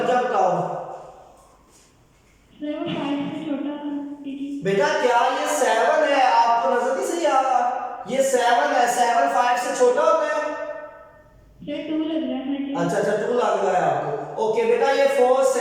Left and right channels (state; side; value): identical; both; correlation 1.00